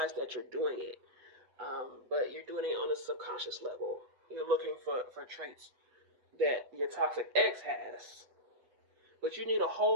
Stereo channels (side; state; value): left; late; 8.0 ms